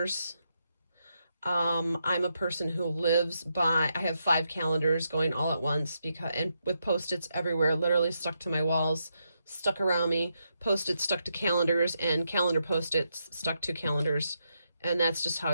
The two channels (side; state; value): both; inverted; correlation -0.82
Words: I'm a person who lives by, I have 5 calendars going all at once and with Post-its everywhere, literally stuck to my walls, stuck around me, Post-its stuck to calendars, and calendar Post-its stuck to calendars. And that's just how